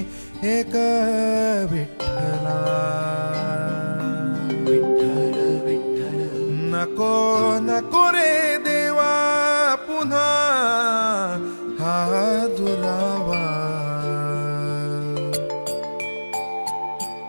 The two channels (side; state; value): both; inverted; correlation -1.00